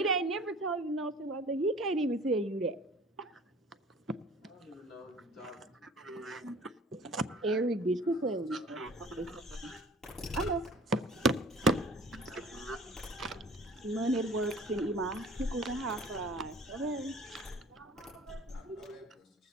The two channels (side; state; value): both; normal; correlation 0.48